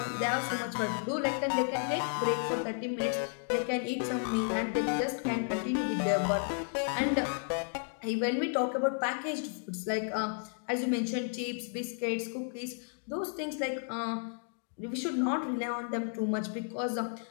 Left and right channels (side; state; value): right; silent; 56 dB below the other